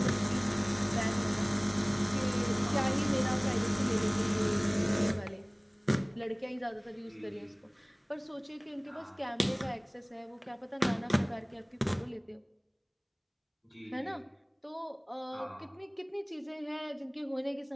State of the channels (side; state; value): both; identical; correlation 1.00